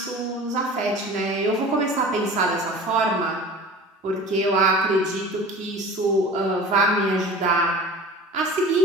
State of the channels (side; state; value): both; normal; correlation 0.39